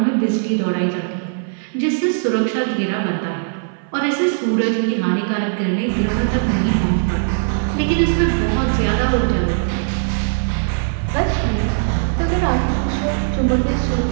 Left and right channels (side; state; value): left; silent; 58 dB below the other